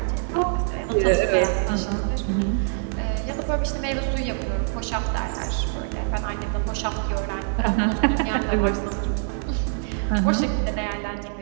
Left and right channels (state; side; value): silent; left; 62 dB below the other